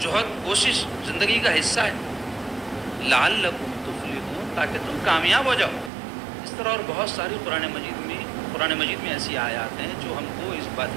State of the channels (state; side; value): drops out; left; at 5.9 s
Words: کوشش زندگی کا حصہ ہے۔ لعلکم تفلحون، تاکہ تم کامیاب ہو جاؤ۔ اس طرح اور بہت ساری قرآن مجید میں ایسی آیات ہیں جو ہم کو اس